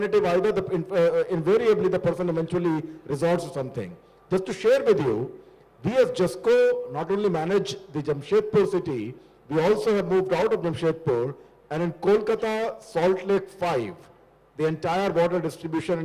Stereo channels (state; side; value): identical; both; correlation 1.00